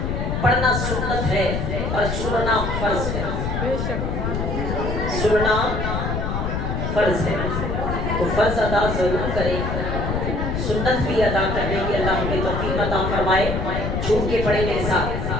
پڑھنا سنت ہے اور سننا فرض ہے. سننا فرض ہے تو فرض ادا ضرور کریں، سنت بھی ادا کرنے کی اللہ ہمیں توفیق عطا فرمائے. جھوم کے پڑھیں میرے ساتھ،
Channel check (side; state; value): left; noise; rumble, 1 dB below the sound